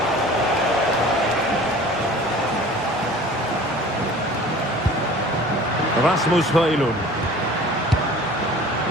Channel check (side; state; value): both; normal; correlation 0.44